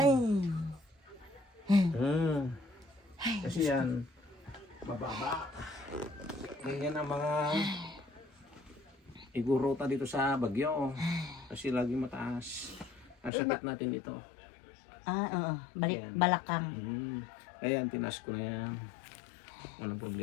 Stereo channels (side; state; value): right; drops out; at 13.3 s